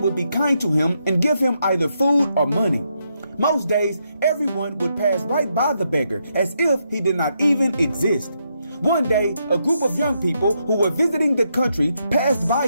would be kind to him and give him either food or money. Most days, everyone would pass right by the beggar as if he did not even exist. One day, a group of young people who were visiting the country passed by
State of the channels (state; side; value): inverted; both; correlation -0.80